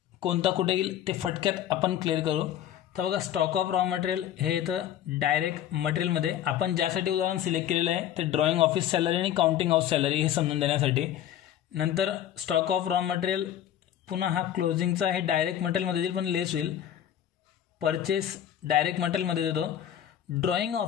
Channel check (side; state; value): right; quieter; 10.9 dB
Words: कोणता कुठे येईल ते फटक्यात आपण क्लिअर करू। तर बघा स्टॉक ऑफ रॉ मटेरियल हे इथं डायरेक्ट मटेरियलमध्ये आपण ज्यासाठी उदाहरण सिलेक्ट केलेलं आहे ते ड्रॉइंग ऑफिस सॅलरी आणि काउंटिंग हाऊस सॅलरी हे समजून देण्यासाठी। नंतर स्टॉक ऑफ रॉ मटेरियल पुन्हा हा क्लोजिंगचा हे डायरेक्ट मटेरियलमध्ये येईल पण लेस होईल। परचेस डायरेक्ट मटेरियलमध्ये देतो। ड्रॉइंग